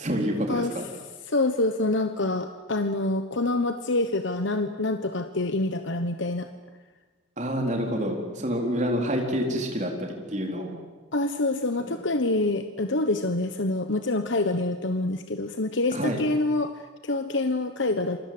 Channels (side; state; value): both; normal; correlation 0.19